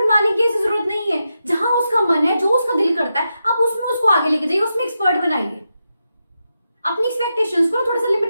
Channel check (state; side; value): inverted; both; correlation -0.87